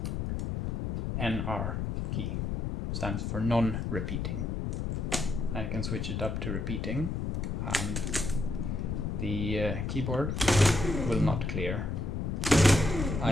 NR key, stands for non-repeating. I can switch it up to repeating, and the keyboard will not clear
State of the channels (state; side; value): noise; left; rumble, 2 dB below the sound